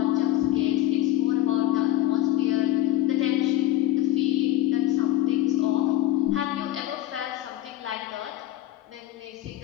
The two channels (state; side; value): quieter; right; 14.5 dB